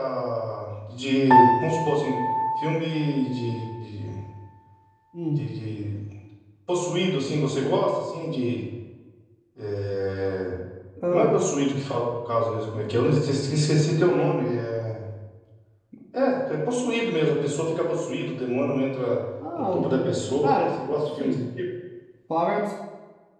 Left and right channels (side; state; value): both; identical; correlation 1.00